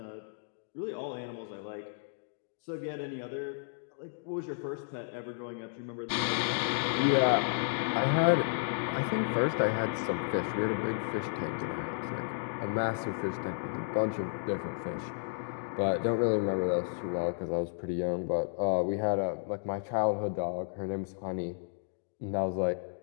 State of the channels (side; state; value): right; silent; digital silence